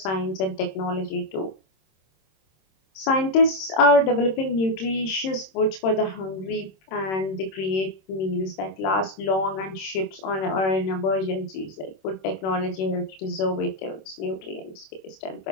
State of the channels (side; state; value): right; late; 26 ms